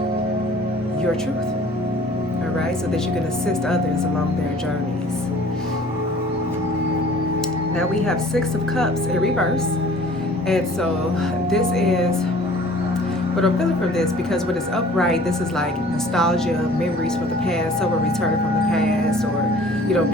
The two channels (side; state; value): both; normal; correlation 0.50